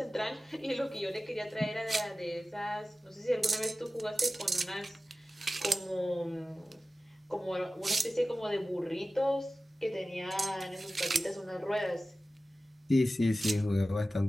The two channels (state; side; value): normal; both; correlation 0.96